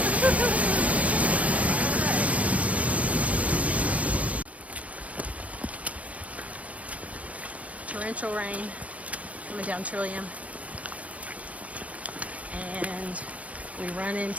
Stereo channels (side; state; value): left; late; 0.067 ms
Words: Torrential rain coming down Trillium, and we run